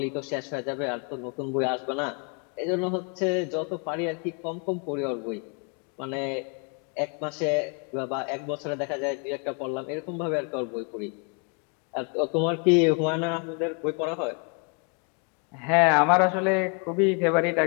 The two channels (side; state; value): right; quieter; 36.7 dB